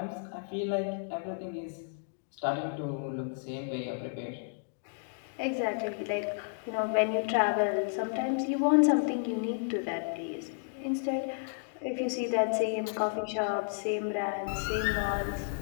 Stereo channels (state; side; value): silent; right; digital silence